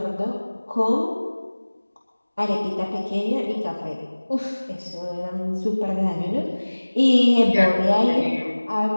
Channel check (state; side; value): inverted; both; correlation -1.00